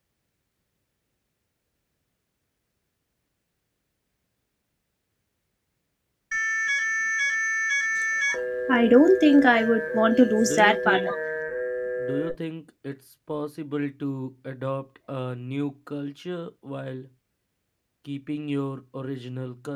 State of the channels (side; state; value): both; identical; correlation 1.00